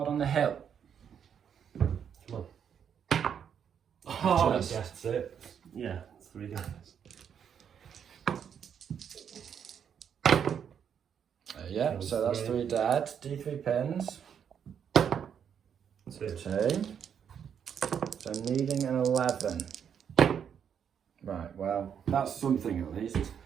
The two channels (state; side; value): quieter; left; 8.0 dB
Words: on the hill. Come on. Oh, that's it. Yeah, it's 3 guys. Yeah, so that's 3 dead. D3 pins. 2. So needing an 11. Right, well, that's something at least.